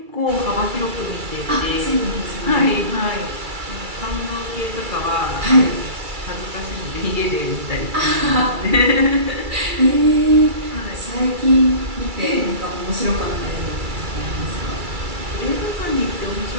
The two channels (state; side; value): late; left; 2.3 ms